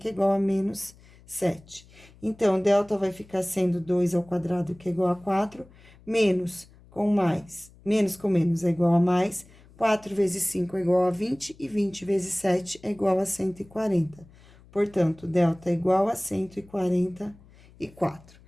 é igual a menos 7. Então, delta vai ficar sendo 2 ao quadrado, que é igual a 4, menos com mais, menos com menos é igual a mais, 4 vezes 5 é igual a 20, e 20 vezes 7 é igual a 140. Portanto, delta é igual a 144.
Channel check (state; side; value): noise; left; hum, 25 dB below the sound